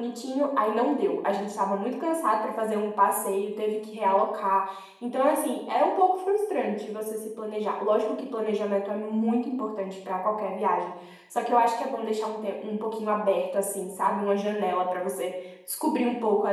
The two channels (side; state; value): both; identical; correlation 1.00